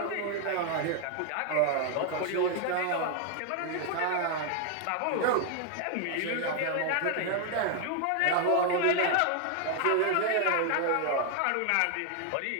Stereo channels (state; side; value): different; both; correlation 0.00